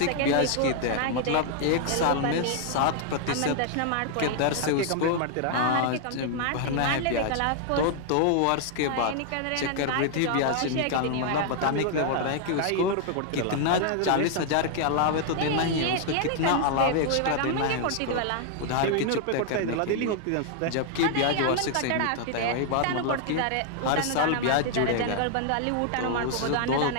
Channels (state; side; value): different; both; correlation 0.00